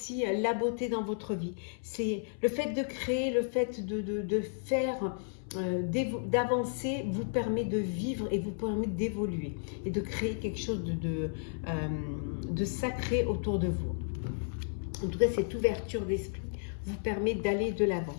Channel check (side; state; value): right; silent; 56 dB below the other